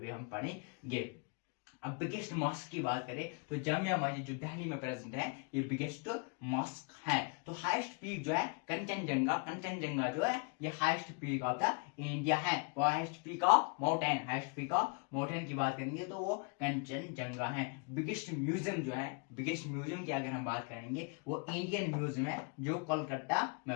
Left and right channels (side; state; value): right; quieter; 34.7 dB